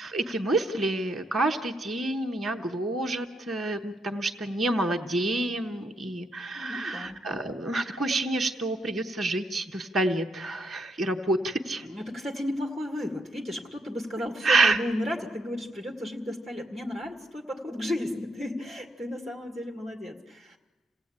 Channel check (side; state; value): both; normal; correlation 0.76